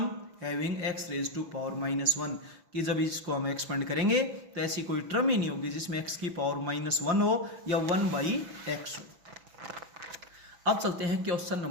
having x raise to power -1, कि जब इसको हम एक्सपेंड करेंगे तो ऐसी कोई टर्म ही नहीं होगी जिसमें x की पावर -1 हो या 1/x हो। अब चलते हैं क्वेश्चन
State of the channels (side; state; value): left; late; 6.0 ms